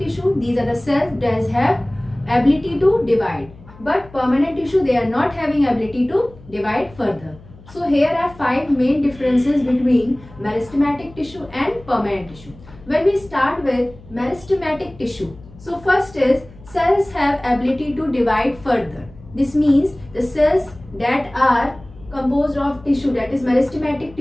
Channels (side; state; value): left; noise; hum, 22 dB below the sound